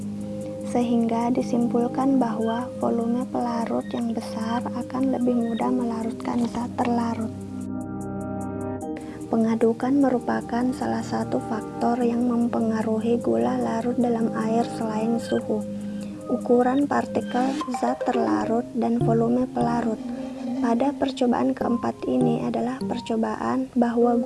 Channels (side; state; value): both; identical; correlation 1.00